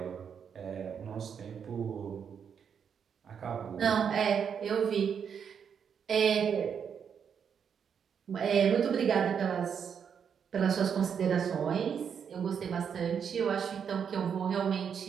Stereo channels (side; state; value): left; quieter; 7.3 dB